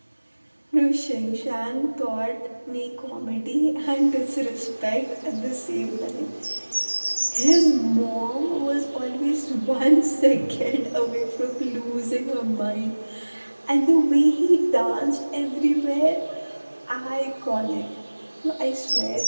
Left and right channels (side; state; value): both; inverted; correlation -1.00